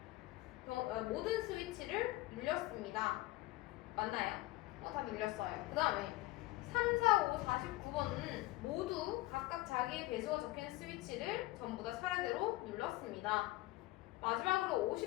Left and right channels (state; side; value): quieter; right; 18.9 dB